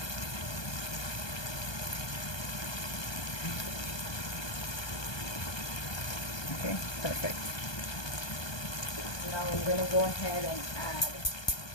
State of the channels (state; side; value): late; right; 1.2 ms